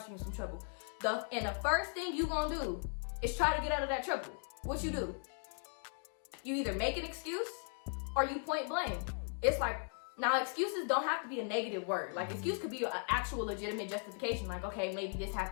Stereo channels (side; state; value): right; silent; 53 dB below the other